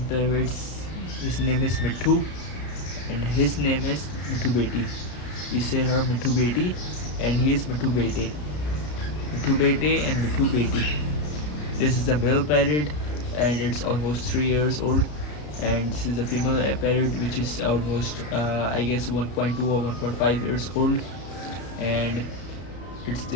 parrots. His name is Mithu, and his name is Mithu Beti. We say her Mithu Beti, and he is Mithu Bete. Mithu Bete and Mithu Beti. This is a male parrot, and it's almost 3 years old. And this is a female parrot, which is almost I guess 1.2 or 1.5 years old. And it's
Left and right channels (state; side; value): late; right; 33 ms